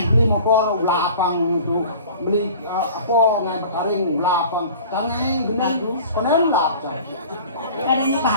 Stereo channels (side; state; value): both; inverted; correlation -0.43